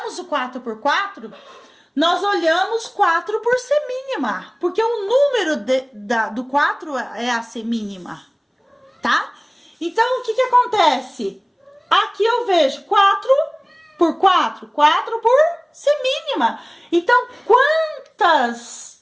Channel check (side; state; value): both; identical; correlation 1.00